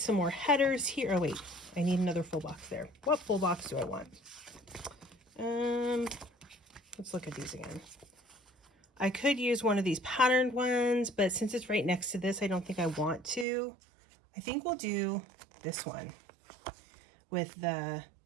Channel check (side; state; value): left; drops out; at 13.5 s